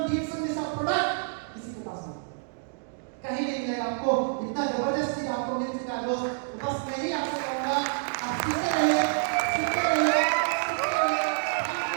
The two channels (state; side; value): silent; left; digital silence